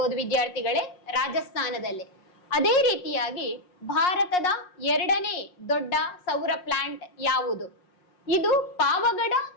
ವಿದ್ಯಾರ್ಥಿಗಳೇ, ರಾಜಸ್ಥಾನದಲ್ಲಿ. ಅದೇ ರೀತಿಯಾಗಿ ಭಾರತದ ಎರಡನೇ ದೊಡ್ಡ ಸೌರ ಪ್ಲಾಂಟ್ ಯಾವುದು? ಇದು ಪಾವಗಡ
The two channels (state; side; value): late; right; 5.5 ms